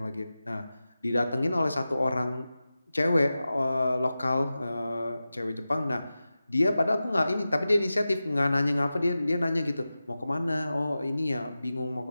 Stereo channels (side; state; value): both; inverted; correlation -0.95